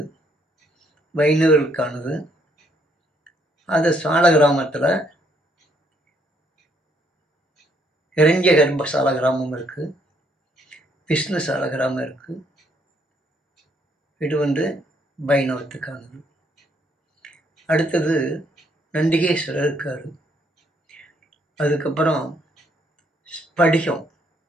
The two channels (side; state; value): both; normal; correlation 0.70